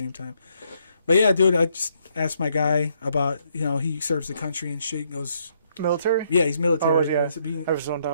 time. But yeah, dude, I just asked my guy about, he serves the country and shit. He goes, military? Yeah, he's military. I was zoned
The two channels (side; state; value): both; inverted; correlation -0.73